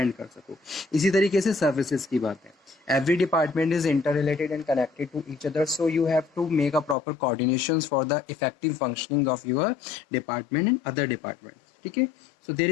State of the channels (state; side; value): drops out; right; at 7.0 s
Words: कर सको। इसी तरीके से सर्विसेज की बात है, every department is inter related and connected to each other, so you have to make a proper coordination for the effective functioning of your department and other department. ठीक है, so there